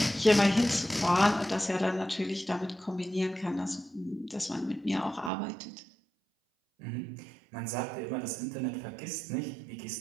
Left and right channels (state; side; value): drops out; left; at 5.3 s